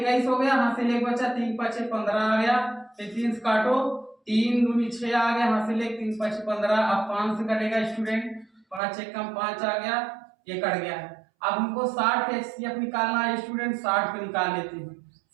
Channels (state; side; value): drops out; left; at 8.8 s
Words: हो गया, हासिल 1 बचा, 3 5 15 आ गया। फिर 3 से काटो, 3 दूनी 6 आ गया, हासिल 1 3 5 15। अब 5 से कटेगा स्टूडेंट, 5 1 कम 5 आ गया, ये कट गया है। अब हमको 60 का एचसीएफ निकालना है स्टूडेंट। 60 को निकाल लेते हैं।